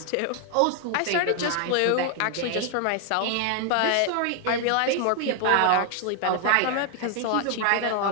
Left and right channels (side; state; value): both; different; correlation 0.00